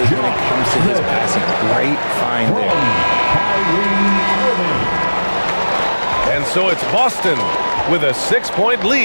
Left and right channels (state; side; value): inverted; both; correlation -1.00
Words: when it comes to his passing. Great find there. And so it's Boston with a 6-point